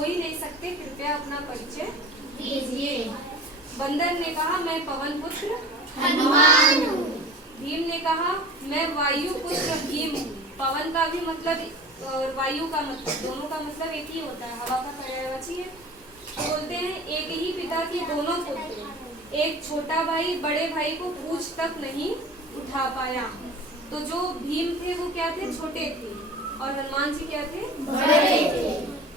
ही नहीं सकते, कृपया अपना परिचय दीजिए। बंदर ने कहा, मैं पवन पुत्र हनुमान हूँ। भीम ने कहा, मैं वायु पुत्र भीम हूँ। पवन का भी मतलब और वायु का मतलब, दोनों का मतलब एक ही होता है, हवा का पर्यायवाची है। बोलते हैं एक ही पिता के दोनों पुत्र, एक छोटा भाई बड़े भाई को पूछ तक नहीं उठा पाया। तो जो भीम थे वो क्या थे? छोटे थे, और हनुमान जी क्या थे? बड़े थे।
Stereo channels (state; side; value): normal; both; correlation 0.39